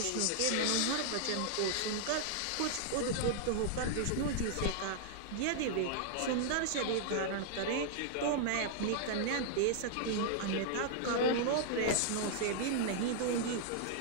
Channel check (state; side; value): different; both; correlation -0.01